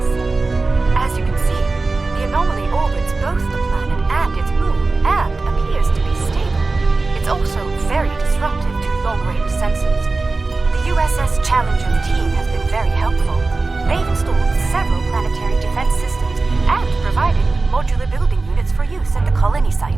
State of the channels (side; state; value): left; quieter; 3.6 dB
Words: As you can see, the anomaly orbits both the planet and its moon, and appears to be stable. It's also very disruptive to long-range sensors. The USS Challenger team has been very helpful. They've installed several planetary defense systems and provided modular building units for use at the colony